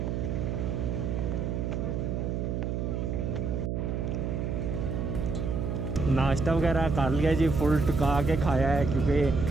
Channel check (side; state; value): right; noise; hum, 1 dB below the sound